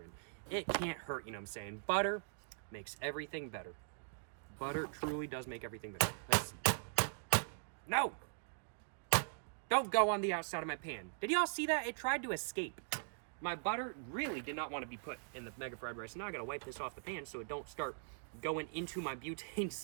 in. It can't hurt, you know what I'm saying? Butter makes everything better. Butter truly does make everything better. Let's... No! Don't go on the outside of my pan. Did y'all see that? It tried to escape. My butter really did not want to be put in the mega fried rice. Now I gotta wipe this off the pan so it don't start going into my butane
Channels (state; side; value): silent; left; digital silence